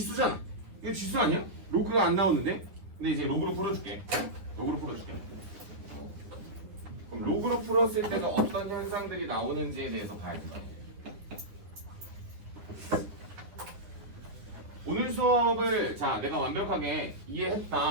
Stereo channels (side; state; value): left; late; 10 ms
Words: 이거 지수 아니야? 로그가 안 나오는데? 근데 이제 로그로 풀어줄게. 로그로 풀어줄게. 그럼 로그로 풀었을 때가 어떤 현상들이 나오는지에 대해서 봐야 된다. 오늘 수업을 자 내가 완벽하게